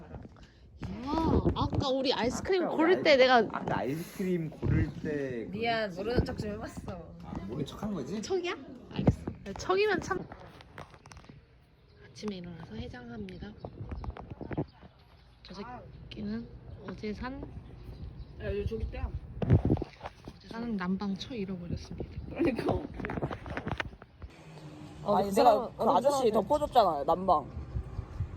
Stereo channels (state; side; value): identical; both; correlation 1.00